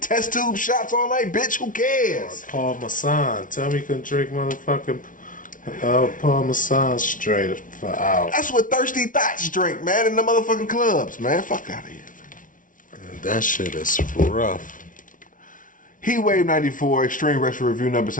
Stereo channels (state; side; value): late; right; 0.38 ms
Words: test tube shots all night, bitch. Who cares? Paul Masson. Tell me you can drink motherfucking Paul Masson straight for hours. That's what Thirsty Thoughts drink, man, in the motherfucking clubs, man. Fuck out of here. That shit is rough. Hwoud 94, Extreme Retro Review number